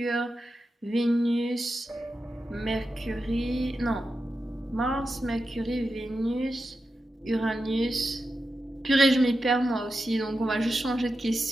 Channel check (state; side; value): normal; both; correlation 0.90